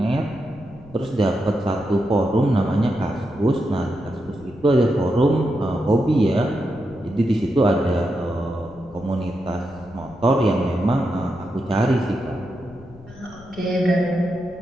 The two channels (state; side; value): noise; left; rumble, 21 dB below the sound